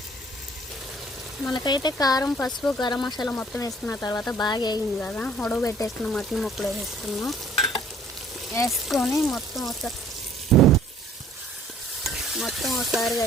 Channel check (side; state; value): both; normal; correlation 0.56